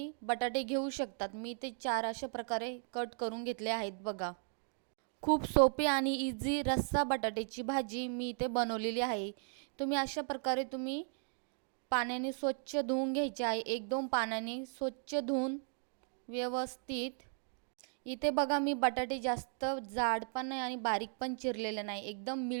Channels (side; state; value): left; silent; 53 dB below the other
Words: बटाटे घेऊ शकतात. मी ते 4 अशा प्रकारे कट करून घेतले आहेत बघा. खूप सोपी आणि इझी रस्सा बटाट्याची भाजी मी इथे बनवलेली आहे. तुम्ही अशा प्रकारे पाण्याने स्वच्छ धुवून घ्यायचे आहे. 1-2 पाण्याने स्वच्छ धुवून व्यवस्थित. इथे बघा मी बटाटे जास्त जाड पण नाही आणि बारीक पण चिरलेले नाही. एकदम